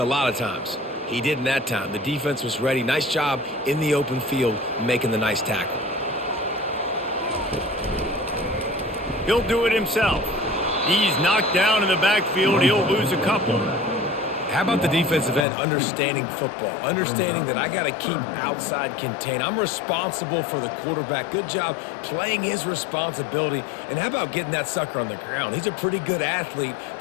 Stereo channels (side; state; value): right; drops out; at 15.5 s